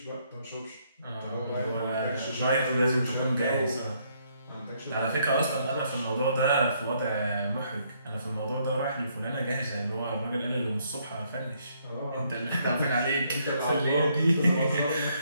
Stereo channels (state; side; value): inverted; both; correlation -0.70